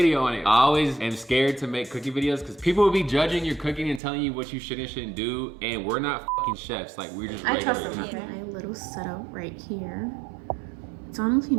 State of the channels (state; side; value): drops out; left; at 4.0 s